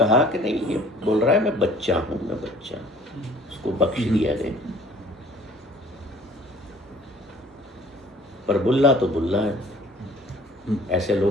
कि नहीं, ये बोल रहा है मैं बच्चा हूँ, मैं बच्चा, उसको बख्श दिया गया। पर बुल्ला तो बुल्ला है। ऐसे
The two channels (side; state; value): both; normal; correlation 0.53